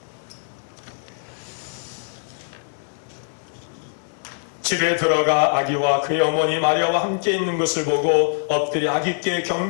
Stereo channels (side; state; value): right; silent; 63 dB below the other